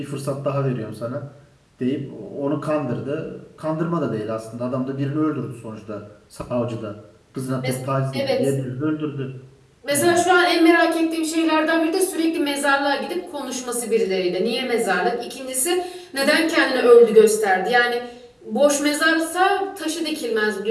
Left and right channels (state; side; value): identical; both; correlation 1.00